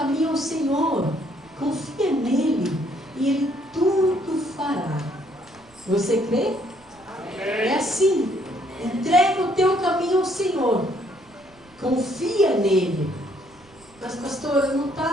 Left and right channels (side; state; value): right; noise; rumble, 29 dB below the sound